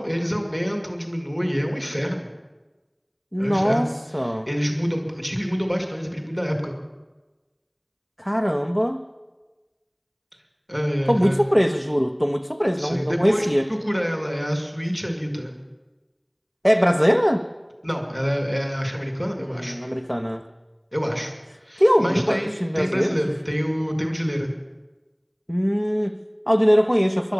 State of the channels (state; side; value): identical; both; correlation 1.00